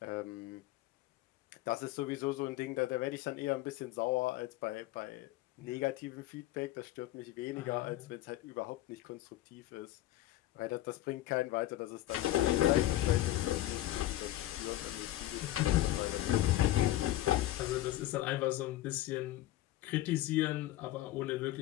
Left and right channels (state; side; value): quieter; right; 15.3 dB